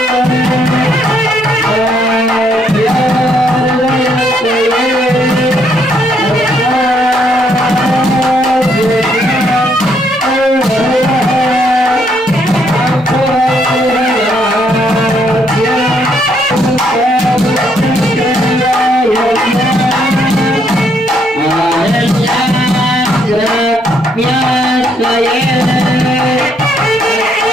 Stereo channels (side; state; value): both; normal; correlation 0.71